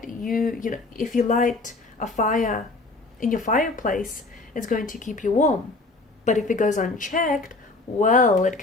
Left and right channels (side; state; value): right; quieter; 3.3 dB